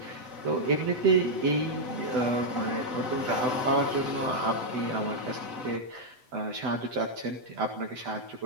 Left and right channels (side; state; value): left; late; 7.9 ms